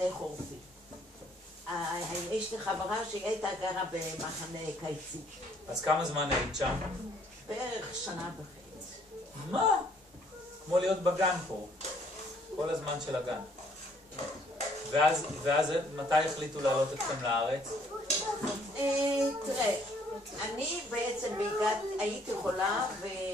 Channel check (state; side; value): normal; both; correlation 0.64